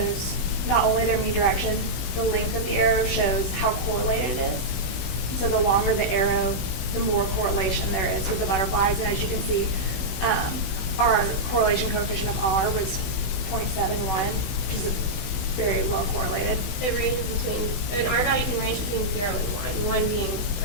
not only their mean direction, the length of the arrow shows how correlated it is. So the longer the arrow, the more correlation there is with the butterflies. And as you can see, our correlation coefficient of R was 0.71, which is very well correlated. It ranges between, an R value can range between 0 and 1, 1 being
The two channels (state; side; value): late; right; 16 ms